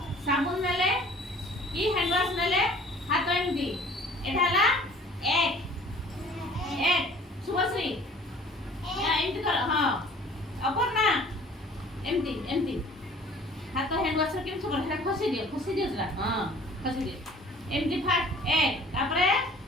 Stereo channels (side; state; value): both; normal; correlation 0.50